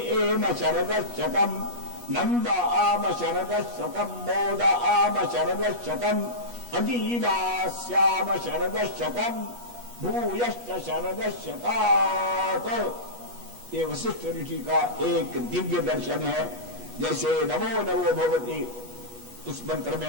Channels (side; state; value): left; late; 8.3 ms